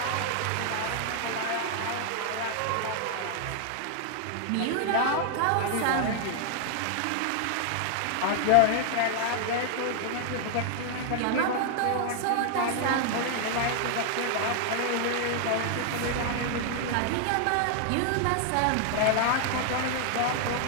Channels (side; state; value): both; different; correlation 0.00